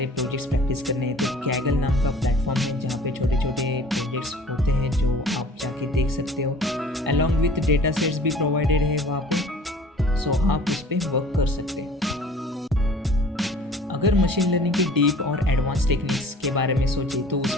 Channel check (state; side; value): normal; both; correlation 0.47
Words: प्रोजेक्ट्स प्रैक्टिस करने हैं तो कैगल नाम का प्लेटफॉर्म है जहाँ पे छोटे छोटे प्रोजेक्ट्स होते हैं जो आप जाके देख सकते हो। अलॉन्ग विथ डेटा सेट्स भी प्रोवाइडेड है वहाँ पे, सो आप उस पर वर्क कर सकते हैं। अगर मशीन लर्निंग की डीप और एडवांस टेक्निक्स के बारे में सोचें तो